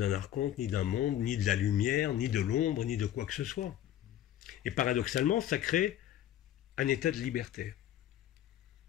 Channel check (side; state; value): right; quieter; 11.8 dB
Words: archonte, ni d'un monde, ni de la lumière, ni de l'ombre, ni de quoi que ce soit. Et paradoxalement, ça crée un état de liberté.